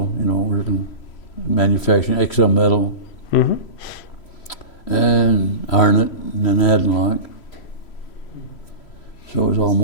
you know, working manufacturing XL metal, and Arnott, and then Adenlock. So it was all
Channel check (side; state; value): right; late; 3.1 ms